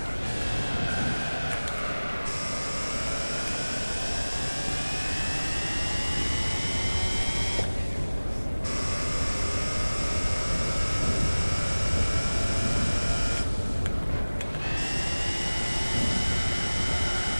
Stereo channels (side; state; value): both; inverted; correlation -1.00